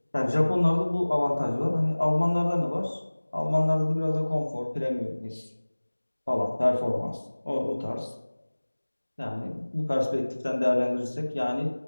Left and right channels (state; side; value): inverted; both; correlation -1.00